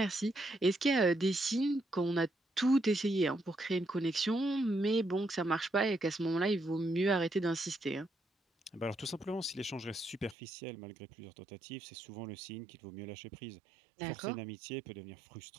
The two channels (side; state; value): left; drops out; at 10.4 s